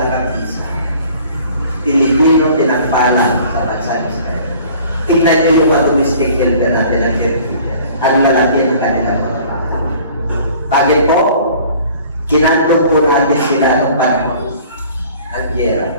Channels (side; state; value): both; inverted; correlation -0.51